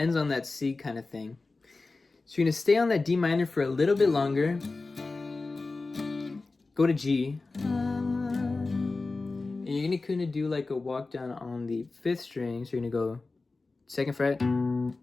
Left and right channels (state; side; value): quieter; right; 3.6 dB